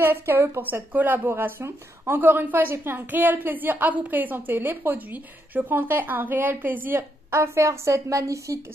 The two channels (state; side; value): normal; both; correlation 0.78